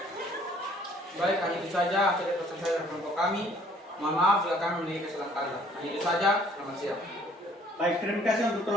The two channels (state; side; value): normal; both; correlation 0.59